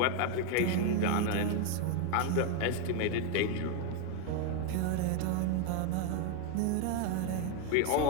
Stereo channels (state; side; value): different; both; correlation 0.01